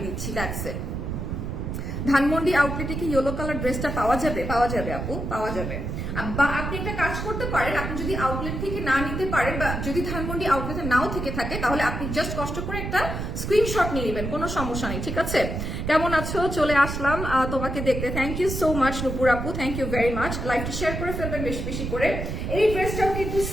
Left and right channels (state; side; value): noise; right; rumble, 4 dB below the sound